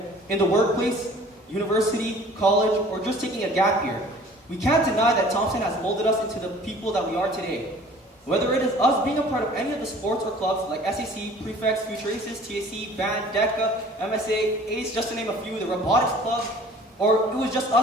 in the workplace, university, college, or just taking a gap year, we can't deny that Thompson has molded us into the people that we are today. Whether it is us being a part of any of the sports or clubs like SAC, Prefects, Future Aces, TAC, Band, DECA, MSA, ACE, just to name a few, the Robotics Club, or it was just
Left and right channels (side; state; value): both; normal; correlation 0.49